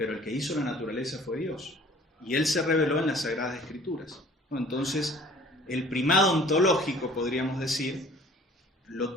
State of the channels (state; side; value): normal; both; correlation 0.50